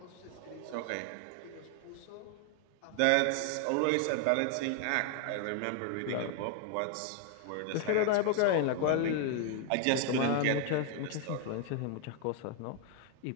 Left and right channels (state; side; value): different; both; correlation 0.00